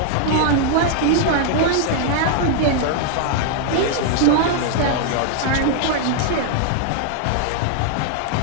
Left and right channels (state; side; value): different; both; correlation 0.00